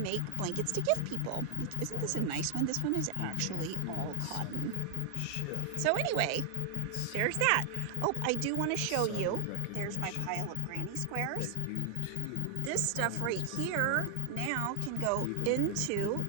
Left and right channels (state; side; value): different; both; correlation 0.00